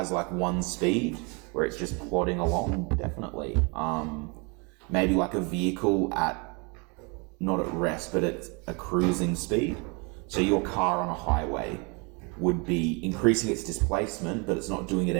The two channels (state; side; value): quieter; left; 31.6 dB